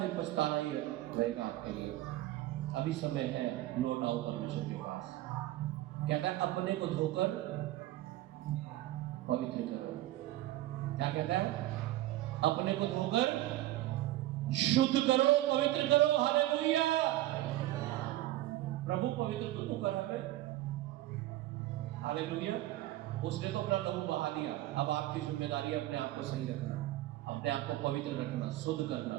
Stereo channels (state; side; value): quieter; left; 15.7 dB